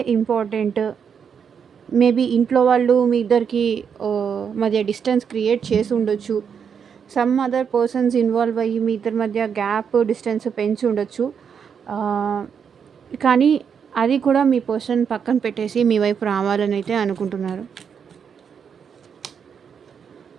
ఇంపార్టెంట్. మేబీ ఇంట్లో వాళ్ళు మీ ఇద్దరికి మధ్య డిస్టెన్స్ క్రియేట్ చేసి ఉండొచ్చు. సమ్ అదర్ పర్సన్స్ ఇన్వాల్వ్ అయ్యి మీ ఇద్దరి మధ్య గ్యాప్, డిస్టెన్స్ పెంచి ఉండొచ్చు. కానీ అది కూడా మీ పర్సన్ పక్కన పెట్టేసి మీ వైపు రావాలని అయితే అనుకుంటున్నారు.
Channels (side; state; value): left; quieter; 7.0 dB